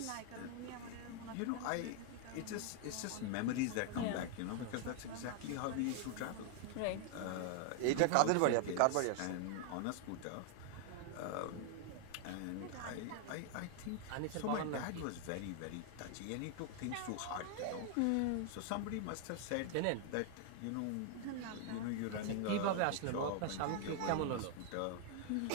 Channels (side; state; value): both; different; correlation 0.00